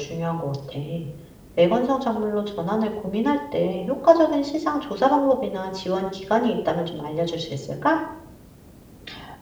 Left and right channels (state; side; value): identical; both; correlation 1.00